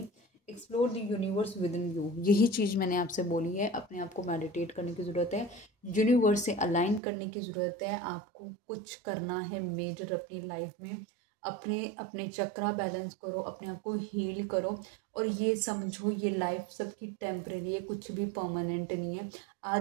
explore the universe within you. यही चीज़ मैंने आपसे बोली है, अपने आप को मेडिटेट करने की ज़रूरत है, यूनिवर्स से अलाइन करने की ज़रूरत है। आपको कुछ करना है मेजर अपनी लाइफ में, अपने अपने चक्रा बैलेंस करो, अपने आप को हील करो, और ये समझो ये लाइफ सबकी टेम्परेरी है, कुछ भी परमानेंट नहीं है।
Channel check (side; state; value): left; drops out; at 7.0 s